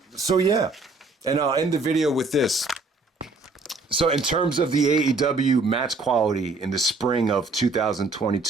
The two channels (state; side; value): quieter; left; 3.5 dB